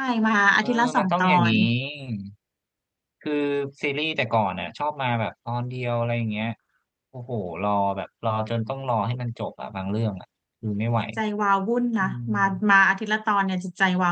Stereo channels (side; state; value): both; identical; correlation 1.00